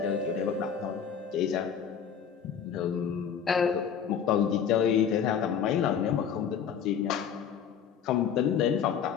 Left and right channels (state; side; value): quieter; right; 7.8 dB